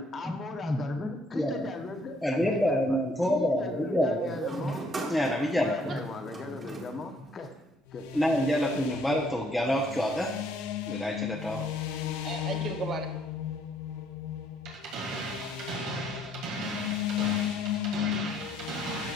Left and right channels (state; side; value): normal; both; correlation 0.66